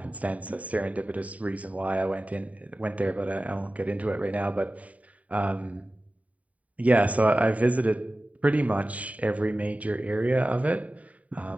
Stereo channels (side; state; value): left; late; 0.069 ms